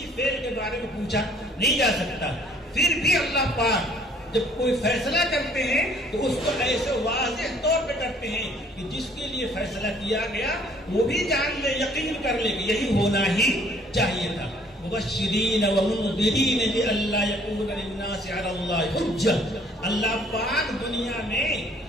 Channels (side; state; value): both; normal; correlation 0.59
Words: فعل کے بارے میں پوچھا نہیں جا سکتا. پھر بھی اللہ پاک جب کوئی فیصلہ کرتے ہیں تو اس کو ایسے واضح طور پہ کرتے ہیں کہ جس کے لیے فیصلہ کیا گیا وہ بھی جان لے، یقین کر لے کہ یہی ہونا ہی چاہیے تھا. مبشرین ومنذرین لئلا یکون للناس علی اللہ حجہ. اللہ پاک دنیا میں